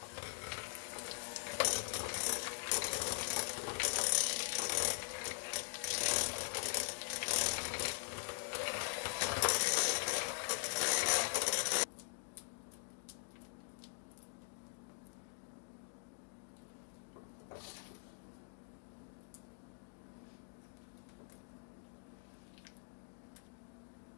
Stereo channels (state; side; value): silent; right; digital silence